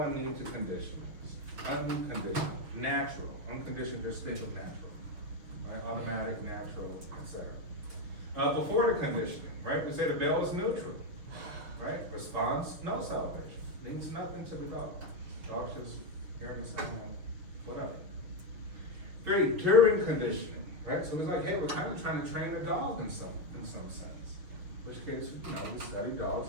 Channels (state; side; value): late; left; 6.4 ms